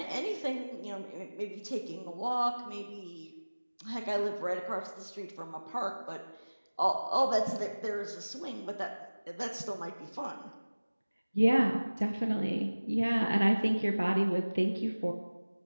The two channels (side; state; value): both; inverted; correlation -1.00